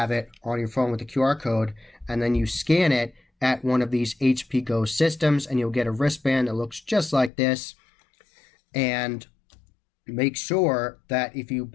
it on your phone with the QR code, and then you scan it at one of these HP Go systems and you'll get a wristband that looks just like this. And make sure that if you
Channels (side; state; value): right; drops out; at 7.3 s